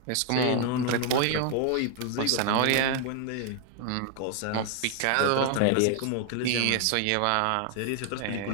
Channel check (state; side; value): different; both; correlation 0.00